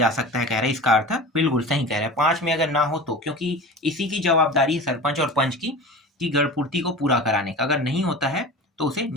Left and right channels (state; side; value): normal; both; correlation 0.35